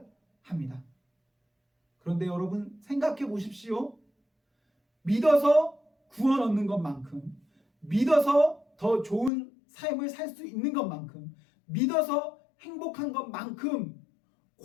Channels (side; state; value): right; drops out; at 9.3 s